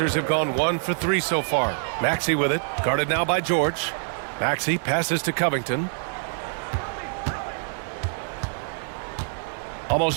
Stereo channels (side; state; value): left; silent; digital silence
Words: have gone 1 for 3 so far. Maxey with it. Guarded now by George. Maxey passes to Covington.